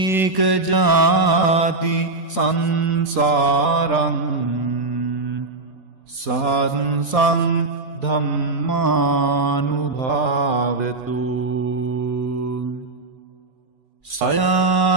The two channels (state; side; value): quieter; left; 3.3 dB